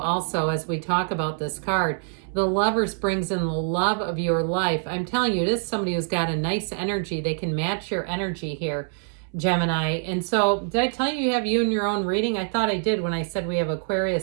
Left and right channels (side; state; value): left; silent; 62 dB below the other